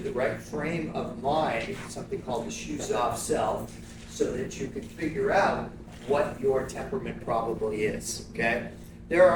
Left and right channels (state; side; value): identical; both; correlation 1.00